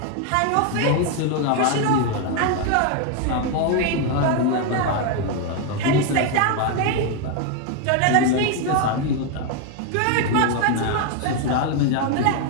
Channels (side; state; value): both; different; correlation 0.01